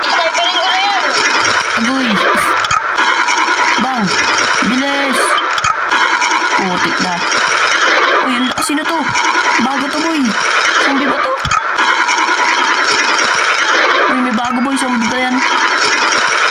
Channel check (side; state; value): both; identical; correlation 1.00